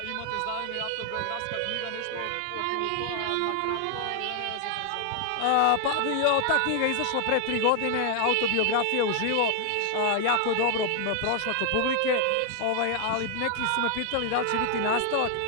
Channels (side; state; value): both; different; correlation 0.00